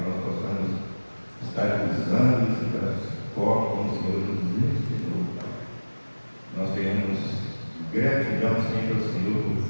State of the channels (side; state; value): both; inverted; correlation -1.00